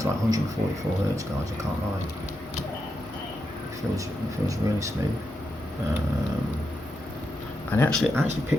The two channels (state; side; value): normal; both; correlation 0.84